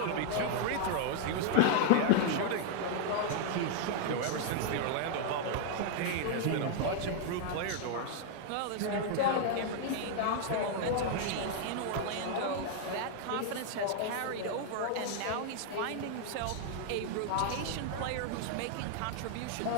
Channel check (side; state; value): both; different; correlation 0.00